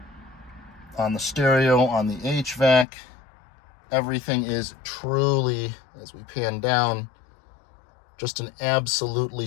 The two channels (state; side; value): drops out; right; at 2.9 s